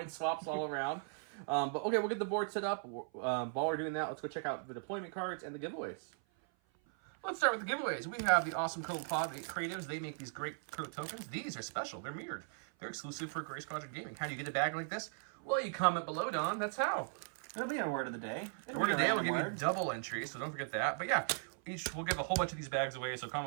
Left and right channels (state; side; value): silent; left; 52 dB below the other